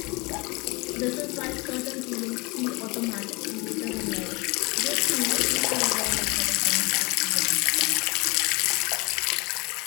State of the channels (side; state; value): right; quieter; 26.6 dB